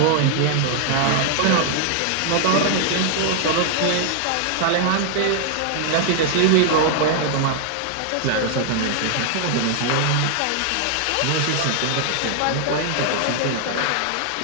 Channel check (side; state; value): both; different; correlation 0.00